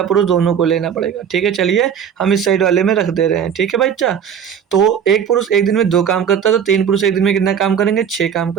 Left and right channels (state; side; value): quieter; left; 7.9 dB